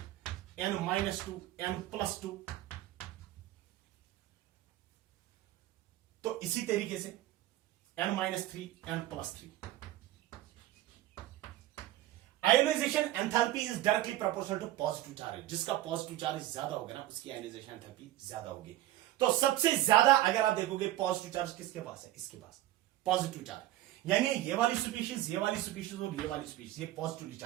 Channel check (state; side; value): quieter; left; 14.9 dB